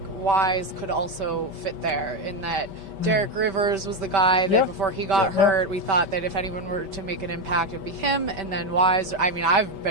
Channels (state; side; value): late; left; 5.1 ms